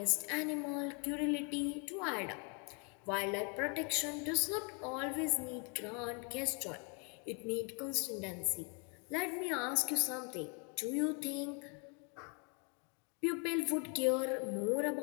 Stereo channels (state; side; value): quieter; right; 34.3 dB